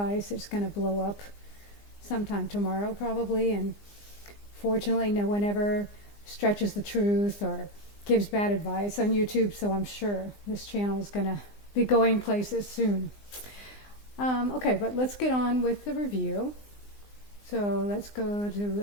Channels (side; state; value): right; late; 20 ms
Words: it's going to blow up sometime tomorrow probably. And fortunately no one ever stretches the truth or gives bad advice on YouTube, so I'm sure this channel is going to be going places soon. Okay, but let's get on with the review. So let's go to